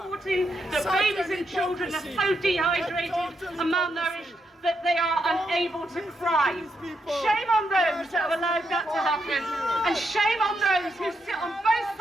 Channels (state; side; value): normal; both; correlation 0.81